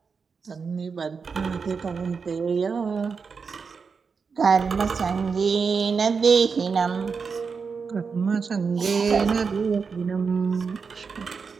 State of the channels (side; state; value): left; quieter; 5.4 dB